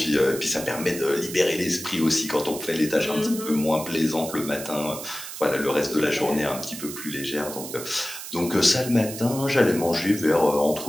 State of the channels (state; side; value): noise; right; hiss, 10 dB below the sound